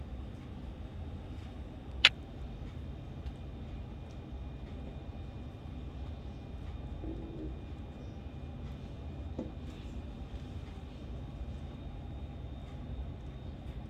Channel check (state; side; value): identical; both; correlation 1.00